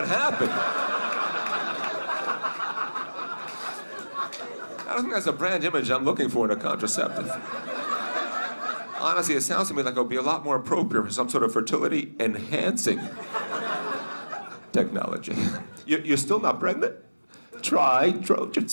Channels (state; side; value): inverted; both; correlation -1.00